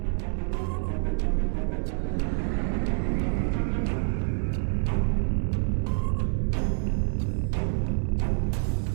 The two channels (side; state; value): left; silent; 60 dB below the other